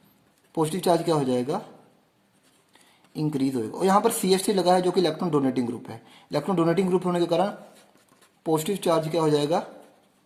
पॉजिटिव चार्ज क्या हो जाएगा, इंक्रीज होगा। और यहाँ पर CH3 लगा है जो कि इलेक्ट्रॉन डोनेटिंग ग्रुप है। इलेक्ट्रॉन डोनेटिंग ग्रुप होने के कारण पॉजिटिव चार्ज क्या हो जाएगा,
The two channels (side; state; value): both; identical; correlation 1.00